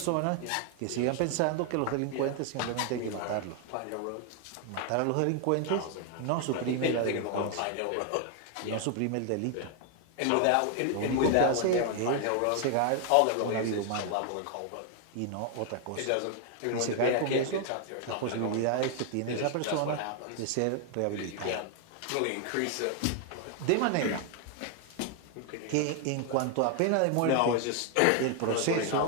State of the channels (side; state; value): both; different; correlation 0.00